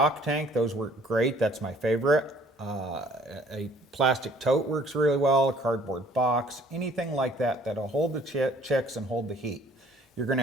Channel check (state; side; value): normal; both; correlation 0.56